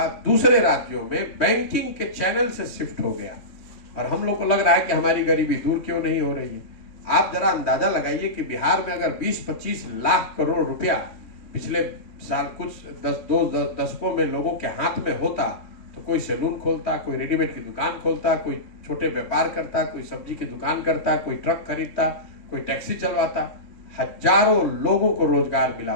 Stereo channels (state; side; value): late; right; 3.2 ms